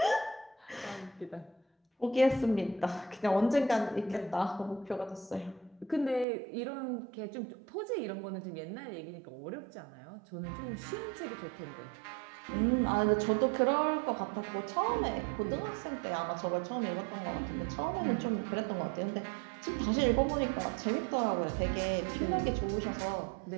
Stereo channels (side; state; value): left; drops out; at 6.2 s